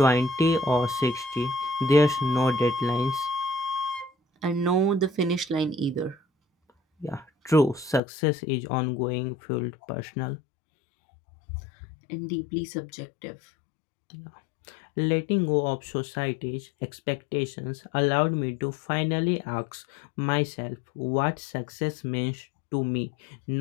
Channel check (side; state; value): right; drops out; at 8.0 s